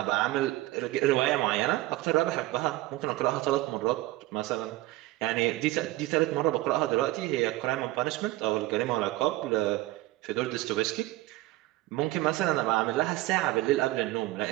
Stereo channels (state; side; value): quieter; left; 17.9 dB